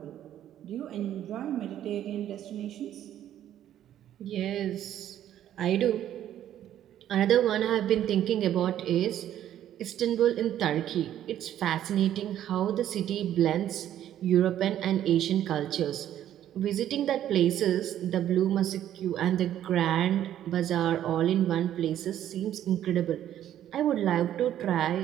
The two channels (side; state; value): left; quieter; 11.4 dB